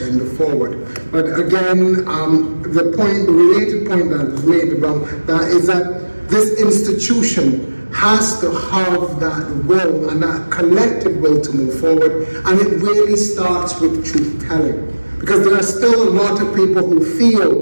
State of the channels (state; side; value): inverted; both; correlation -1.00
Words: forward. But again, the related point that was made about that is that this institution has to have that will and that collective will to move forward, and it really starts with truth-telling. Because there are still a lot of people who